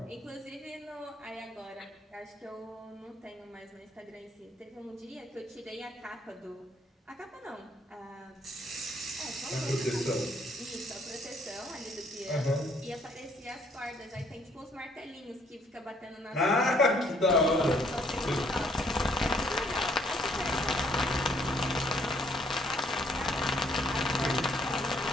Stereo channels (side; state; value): both; normal; correlation 0.65